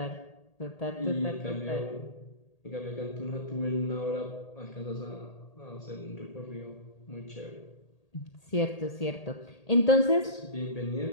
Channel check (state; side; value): late; right; 1.8 ms